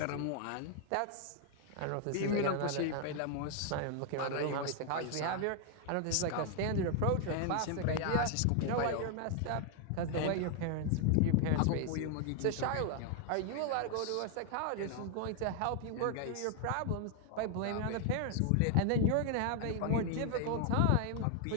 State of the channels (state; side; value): different; both; correlation 0.01